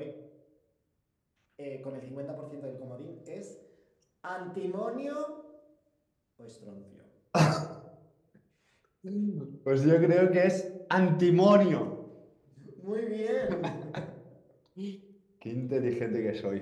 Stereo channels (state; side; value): identical; both; correlation 1.00